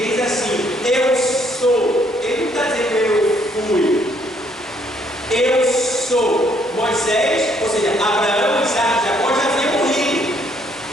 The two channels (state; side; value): normal; both; correlation 0.68